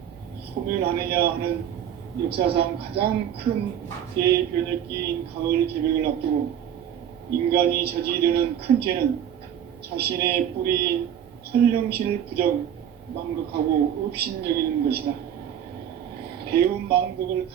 소멸하느냐 하는 역사상 가장 큰 대변혁기인 가을 개벽을 앞두고 인간이 저지르는 큰 죄는 자신의 뿌리인 설령신을 부정, 망각하고 업신여기는 것이다. 배움 배은망덕을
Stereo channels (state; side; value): quieter; left; 9.5 dB